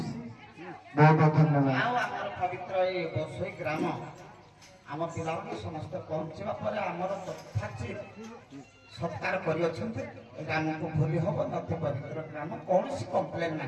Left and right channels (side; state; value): both; identical; correlation 1.00